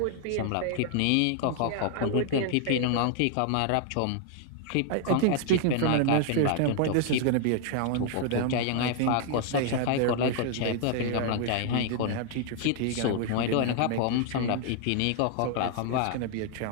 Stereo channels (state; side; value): different; both; correlation 0.00